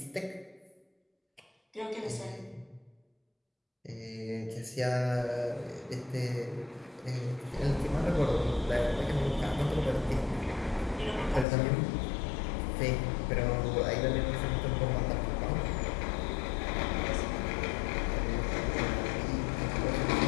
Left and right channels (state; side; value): drops out; right; at 11.5 s